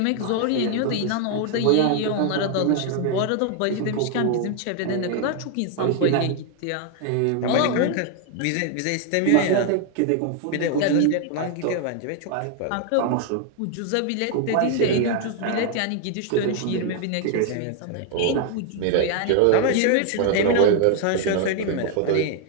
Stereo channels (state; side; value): different; both; correlation 0.00